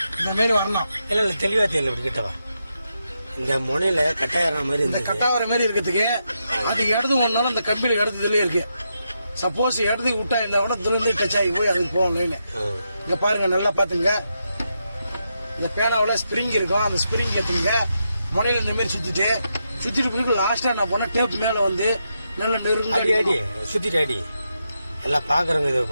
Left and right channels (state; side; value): inverted; both; correlation -0.84